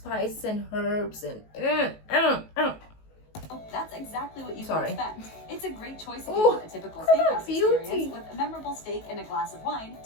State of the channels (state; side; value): late; right; 19 ms